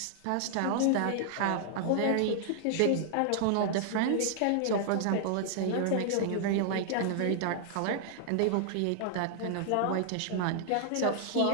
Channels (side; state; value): both; different; correlation -0.01